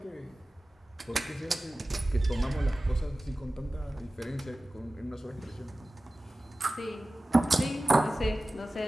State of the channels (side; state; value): both; normal; correlation 0.96